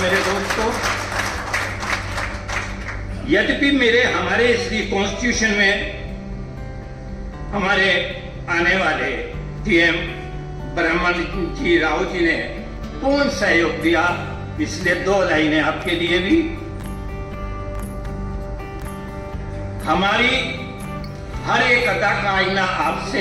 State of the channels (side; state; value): both; identical; correlation 1.00